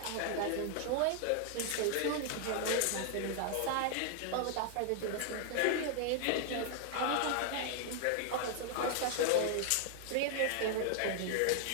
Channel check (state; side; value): different; both; correlation 0.00